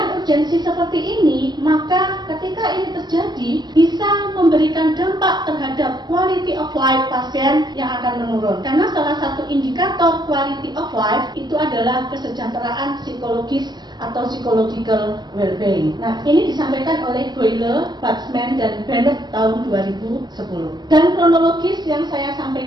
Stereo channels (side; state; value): left; late; 0.21 ms